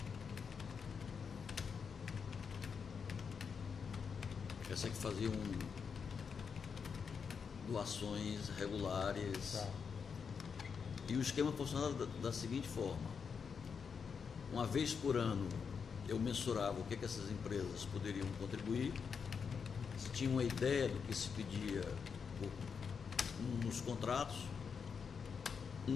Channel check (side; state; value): right; quieter; 6.1 dB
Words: Essa que faziam doações regulares. Tá. E o esquema funcionava da seguinte forma: uma vez por ano eu mensurava o que essas empresas poderiam contribuir, se tinha uma ideia do que se pedia nos contratos,